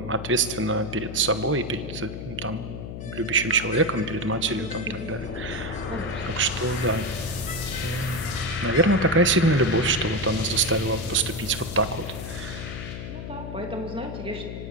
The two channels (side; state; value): left; noise; hum, 8 dB below the sound